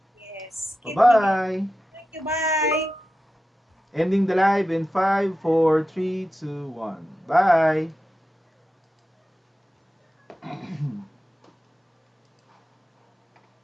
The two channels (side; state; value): both; normal; correlation 0.92